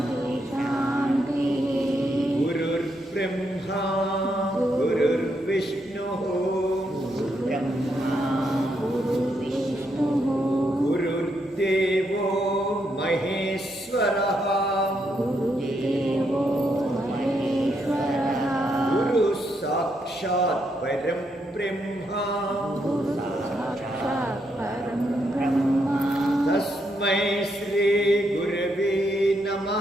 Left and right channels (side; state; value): both; normal; correlation 0.78